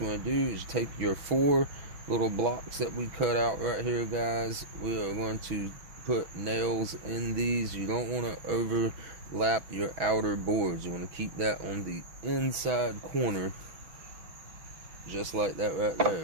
want to do is take your 4 little blocks that we cut out right here, guys. We are going to put nails in these. You don't want to overlap your outer boards. You want to keep that on the inside corner, just like that right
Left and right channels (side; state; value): left; late; 6.2 ms